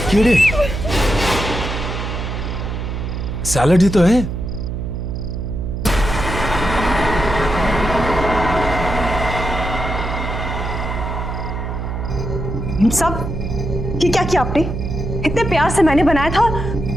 कीड़े? सैलड ही तो है। मेम साहब, ये क्या किया आपने? इतने प्यार से मैंने बनाया था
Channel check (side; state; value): right; noise; hum, 4 dB below the sound